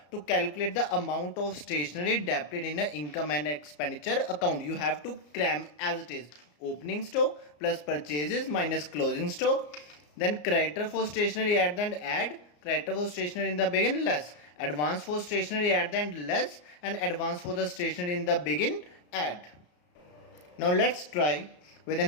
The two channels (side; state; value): right; late; 34 ms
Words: to calculate the amount of stationery debited in an income and expenditure account. You have to cram as it is. Opening stock plus purchases minus closing stock. Then creditor for stationery at the end add, creditor for stationery in the begin less, advance for stationery at the end less, and advance for the stationery in the begin add. Now let's try with the